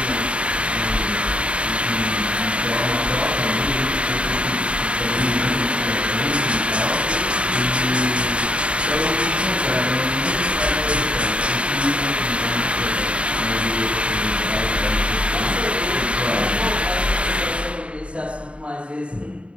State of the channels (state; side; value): late; left; 0.060 ms